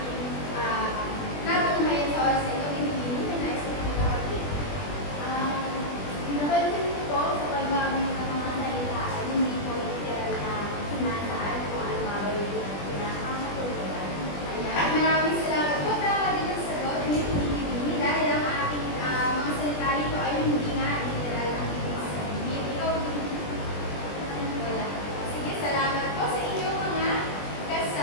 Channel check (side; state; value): right; late; 20 ms